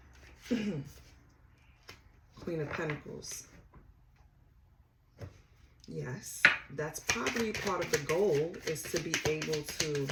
doing? Queen of Pentacles. Yes, that's probably part of the goal, is to be able to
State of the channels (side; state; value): both; identical; correlation 1.00